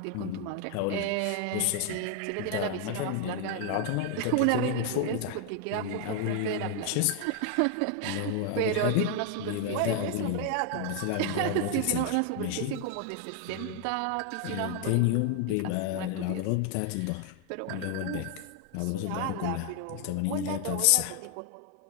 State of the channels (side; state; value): both; different; correlation 0.00